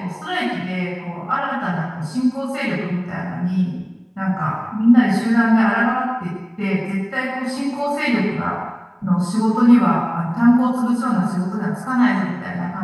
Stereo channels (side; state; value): both; identical; correlation 1.00